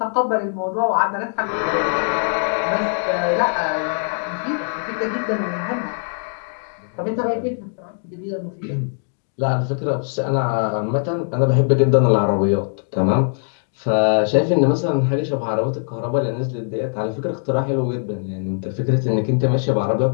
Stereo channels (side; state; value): right; silent; digital silence